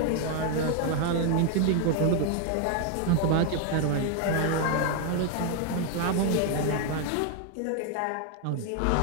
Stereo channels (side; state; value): both; different; correlation 0.00